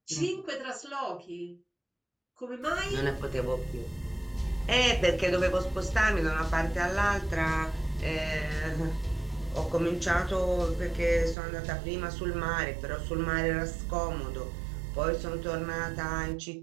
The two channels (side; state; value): left; drops out; at 11.4 s